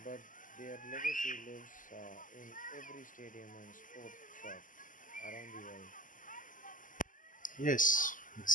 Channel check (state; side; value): late; right; 0.38 ms